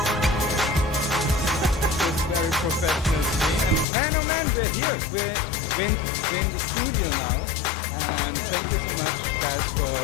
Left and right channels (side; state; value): right; drops out; at 3.9 s